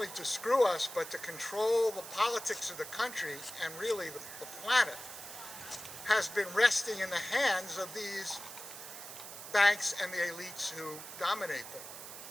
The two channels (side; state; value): right; noise; hiss, 11 dB below the sound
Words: to screw us, but to control the politics of the country and really the planet, has been resting in the hands of these banks and the elites who dominate them.